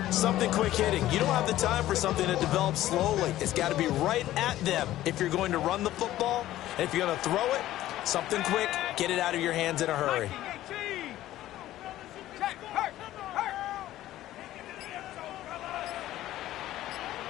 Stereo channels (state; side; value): quieter; right; 14.4 dB